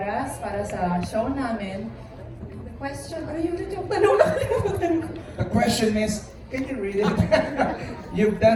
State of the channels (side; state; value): both; identical; correlation 1.00